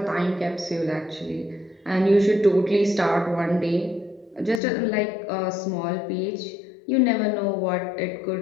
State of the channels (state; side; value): drops out; right; at 4.6 s